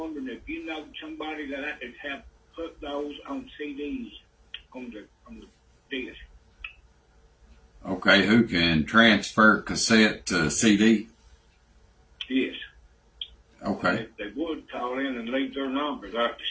if you know somebody that I could have put those on CDs on the disc. Okay, who can transfer cassette to CD? Yes. Okay. If they would call in and leave their numbers at the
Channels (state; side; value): identical; both; correlation 1.00